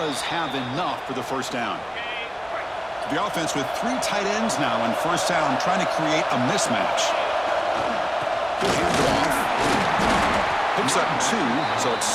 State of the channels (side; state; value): both; identical; correlation 1.00